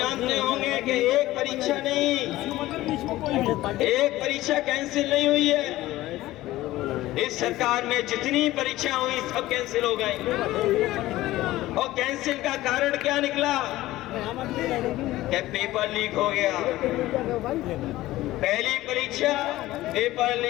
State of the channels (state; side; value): quieter; right; 16.5 dB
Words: होंगे कि एक परीक्षा नहीं, एक परीक्षा कैंसिल नहीं हुई है। इस सरकार में जितनी परीक्षा हुई सब कैंसिल हो गई। और कैंसिल का कारण क्या निकला? कि पेपर लीक हो गया। पहली परीक्षा पेपर